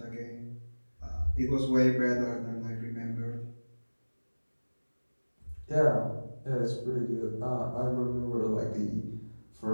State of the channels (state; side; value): inverted; both; correlation -1.00